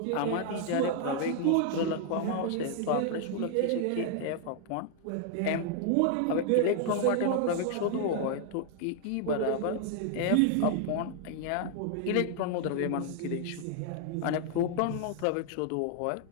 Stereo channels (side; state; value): both; different; correlation 0.00